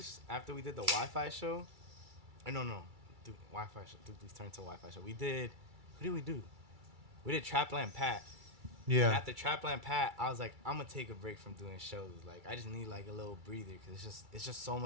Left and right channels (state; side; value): late; left; 2.3 ms